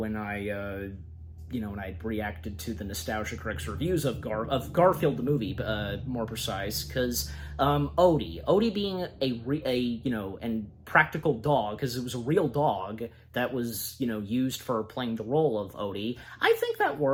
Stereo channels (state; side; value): identical; both; correlation 1.00